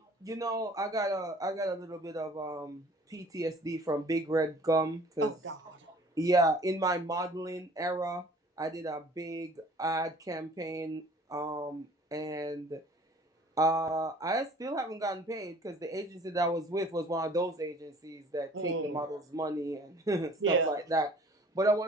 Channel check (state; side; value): normal; both; correlation 0.51